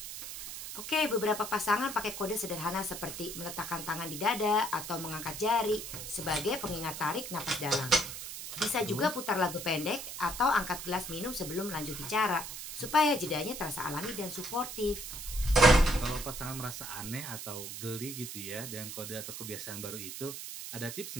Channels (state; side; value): noise; right; hiss, 8 dB below the sound